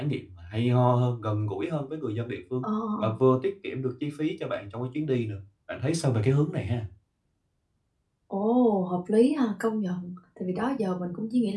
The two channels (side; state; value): both; identical; correlation 1.00